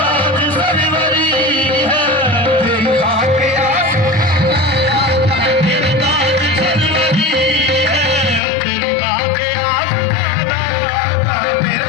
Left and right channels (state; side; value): drops out; right; at 8.4 s